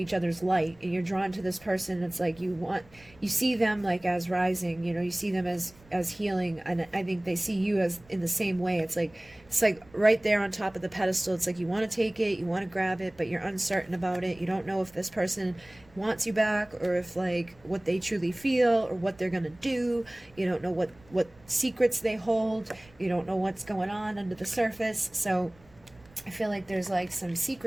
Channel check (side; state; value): right; noise; rumble, 27 dB below the sound